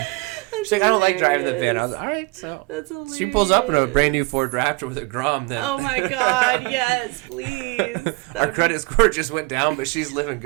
She's like, I don't like driving the van. I was like, all right, so that's hilarious. She pulls up in a brand new Ford Raptor with a Grom. Then. Oh my God, yes, please. Our credit score just went down, but she's living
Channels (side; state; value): left; quieter; 26.1 dB